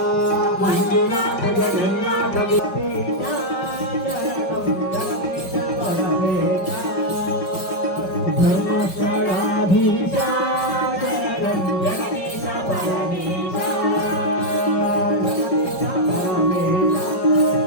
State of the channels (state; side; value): late; right; 5.2 ms